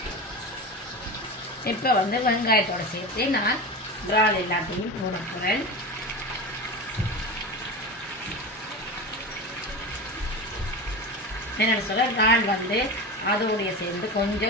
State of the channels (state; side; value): normal; both; correlation 0.26